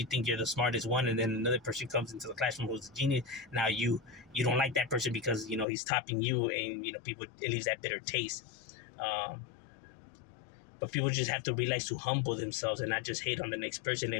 think you're the smartest one, and then another person comes into the classroom who's a genius, now you don't like that person because he's topping you, and people, it leaves that bitter taste. Um, but people just have to realize to humble themselves and not just hate on the next person.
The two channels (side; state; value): right; drops out; at 5.7 s